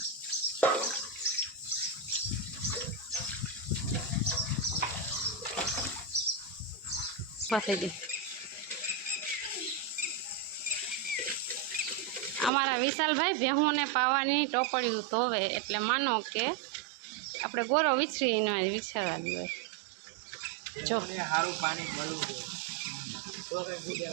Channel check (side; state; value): left; drops out; at 12.5 s